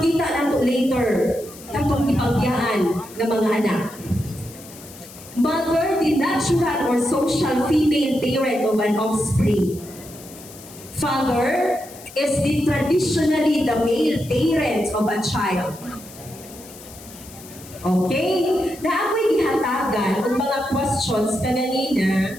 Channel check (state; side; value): noise; left; hiss, 18 dB below the sound